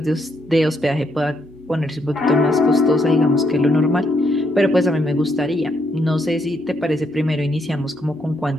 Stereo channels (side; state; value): both; normal; correlation 0.75